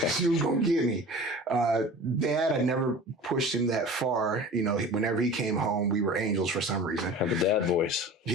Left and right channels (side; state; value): both; normal; correlation 0.39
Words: She was going to get me. Dad, I never pushed him that far. You know, whenever he came home, we were angels for some reason. Had the dad voice.